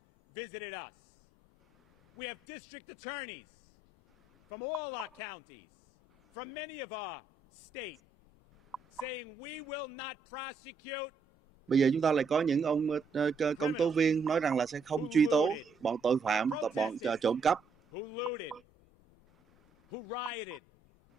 visited us. We have district attorneys from all our counties, from many of our states, saying we will not prosecute. Bây giờ chúng ta lại có những ông công tố viên nói rằng là sẽ không truy tố bọn tội phạm, bọn trộm cắp, who looted, who rioted,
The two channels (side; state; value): left; quieter; 4.4 dB